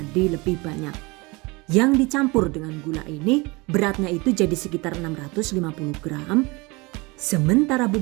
lebih banyak. Yang dicampur dengan gula ini, beratnya itu jadi sekitar 650 gram. Sementara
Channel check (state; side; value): quieter; left; 25.4 dB